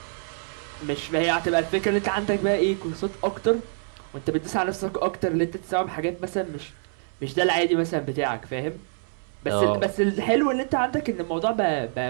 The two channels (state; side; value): silent; left; 61 dB below the other